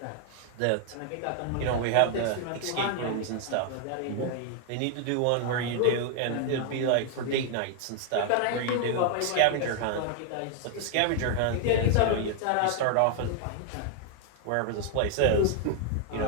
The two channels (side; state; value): both; different; correlation 0.00